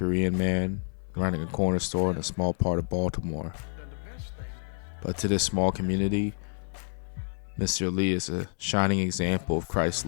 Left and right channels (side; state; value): right; silent; 59 dB below the other